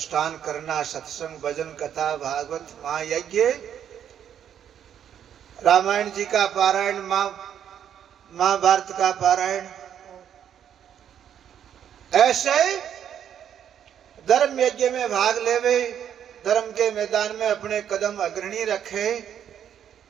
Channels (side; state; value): left; quieter; 9.3 dB